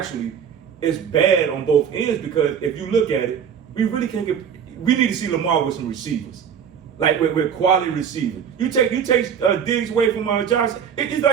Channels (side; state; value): left; quieter; 7.8 dB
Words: it's bad on both ends because if you look at it, we really can't get. We need to see Lamar with some receivers, like with quality receivers. You take Diggs away from Josh. It's